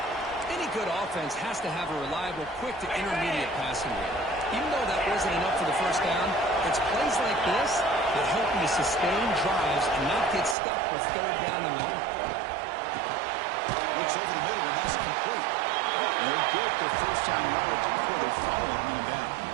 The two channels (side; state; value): left; drops out; at 10.6 s